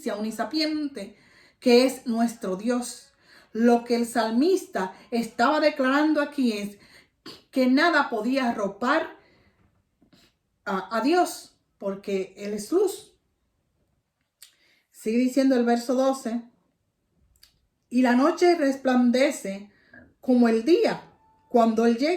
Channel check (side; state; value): both; identical; correlation 1.00